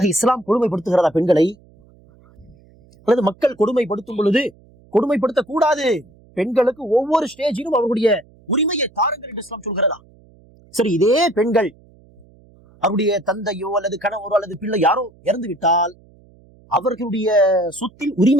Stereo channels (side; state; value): right; noise; hum, 28 dB below the sound